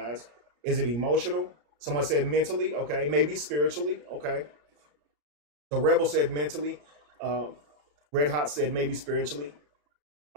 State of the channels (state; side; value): late; left; 34 ms